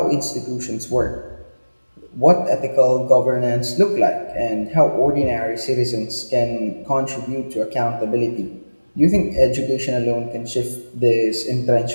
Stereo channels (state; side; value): inverted; both; correlation -1.00